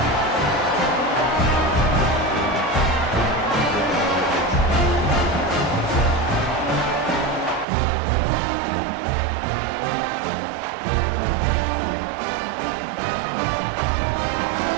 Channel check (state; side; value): drops out; left; at 7.7 s